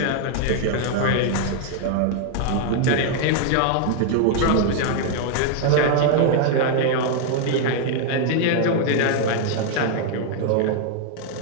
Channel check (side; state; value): both; different; correlation 0.00